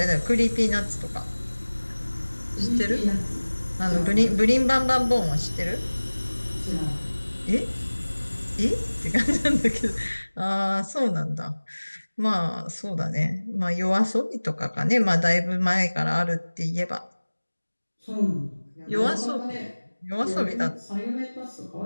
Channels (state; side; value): inverted; both; correlation -1.00